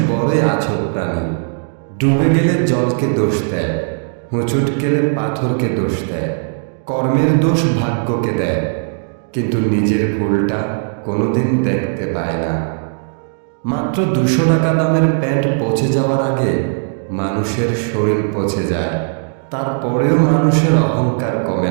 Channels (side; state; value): left; silent; 66 dB below the other